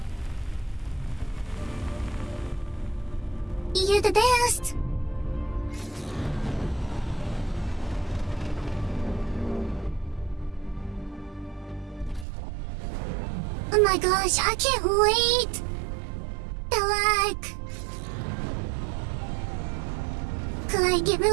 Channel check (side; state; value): left; drops out; at 12.2 s